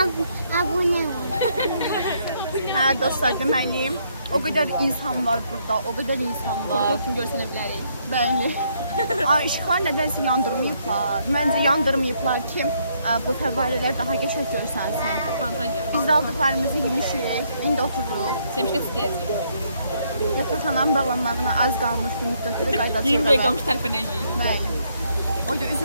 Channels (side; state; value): both; inverted; correlation -0.71